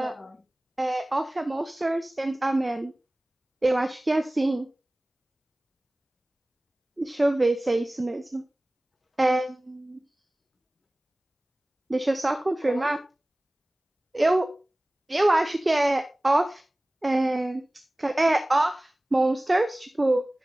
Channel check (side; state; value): both; normal; correlation 0.98